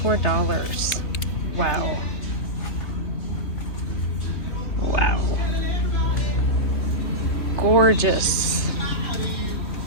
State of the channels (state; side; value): late; right; 3.5 ms